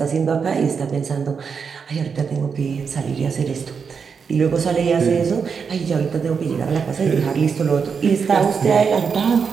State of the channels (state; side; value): quieter; left; 6.0 dB